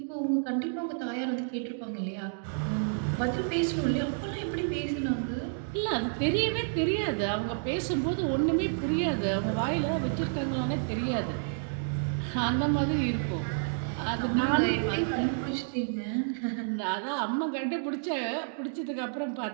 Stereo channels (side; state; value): left; silent; digital silence